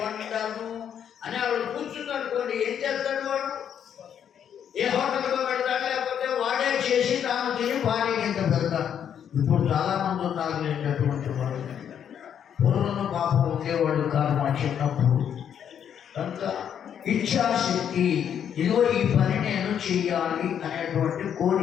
వంటను అని వాడు కూర్చుందనుకోండి, ఏం చేస్తాడు వాడు? ఏ హోటల్తో పెడతాడు, లేకపోతే వాడే చేసి తాను తిని భార్య కింద పెడతాడు. ఇప్పుడు చాలామంది ఉన్నారు అటువంటి వాళ్ళు. పూర్వం పాపం ఉండేవాడు కాదు మా చిన్నప్పుడు. కనుక ఇచ్ఛాశక్తి, ఇదిగో ఈ పని నేను చెయ్యాలి అనేటువంటి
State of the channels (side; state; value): right; quieter; 8.8 dB